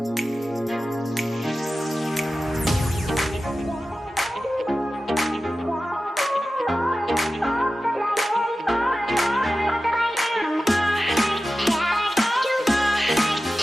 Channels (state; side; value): normal; both; correlation 0.94